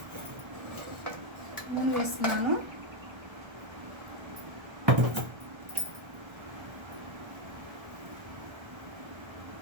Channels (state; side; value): late; left; 1.3 ms